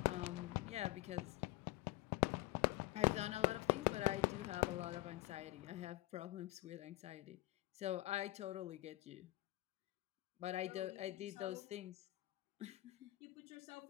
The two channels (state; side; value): quieter; right; 18.6 dB